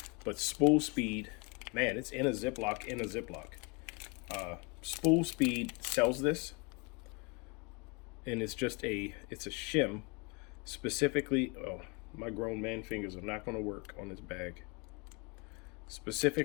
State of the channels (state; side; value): quieter; right; 30.7 dB